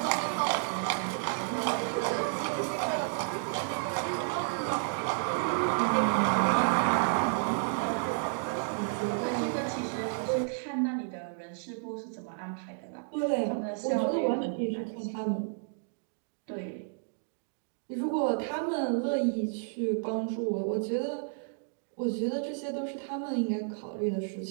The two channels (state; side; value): silent; left; digital silence